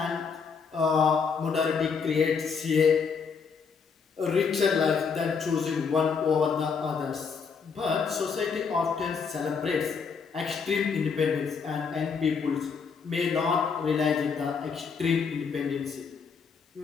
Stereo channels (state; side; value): quieter; right; 5.7 dB